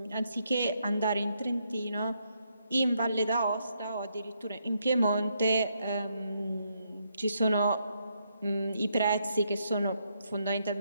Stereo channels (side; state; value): both; inverted; correlation -0.77